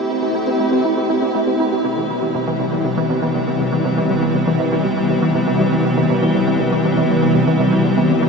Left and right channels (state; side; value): normal; both; correlation 0.46